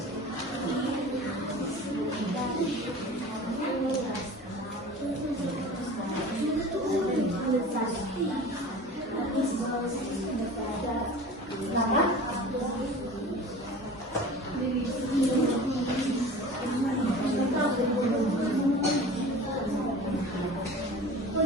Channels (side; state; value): both; normal; correlation 0.39